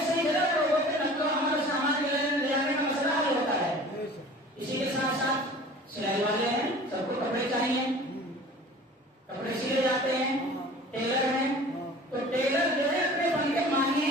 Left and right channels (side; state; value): both; normal; correlation 0.44